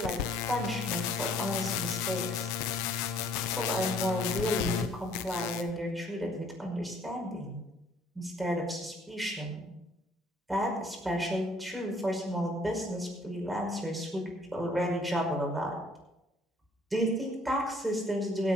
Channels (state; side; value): normal; both; correlation 0.60